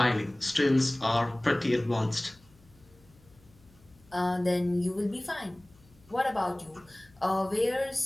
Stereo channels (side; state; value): left; noise; hum, 28 dB below the sound